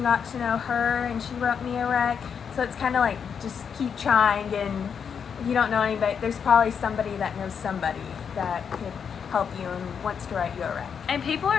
got to know her, and she wrote me a rec. So it's kind of like just keep trying, and if you don't know anybody, there's probably somebody that knows somebody that could help you and wants to write you a rec. And people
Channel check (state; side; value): quieter; right; 7.0 dB